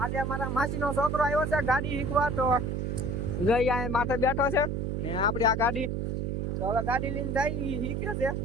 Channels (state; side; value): noise; right; hum, 1 dB below the sound